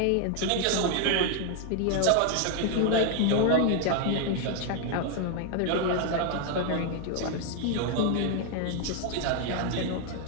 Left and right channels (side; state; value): both; different; correlation 0.00